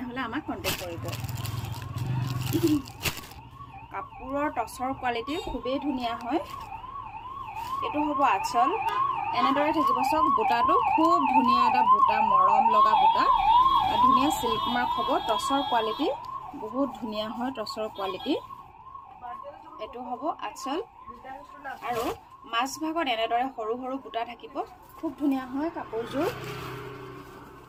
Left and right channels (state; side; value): identical; both; correlation 1.00